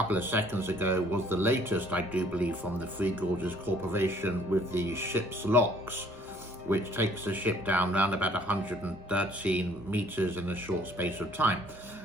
of seconds ago was the latest, I do believe, from the Three Gorges Corporation with the ship's locks, which takes the ship down around about 113 meters in a short space of time.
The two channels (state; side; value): normal; both; correlation 0.59